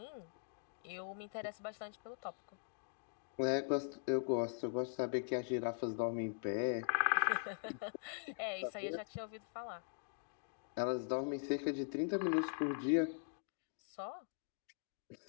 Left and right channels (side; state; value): right; silent; digital silence